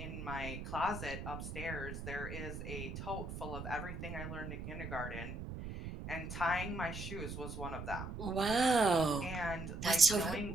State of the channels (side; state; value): right; noise; rumble, 7 dB below the sound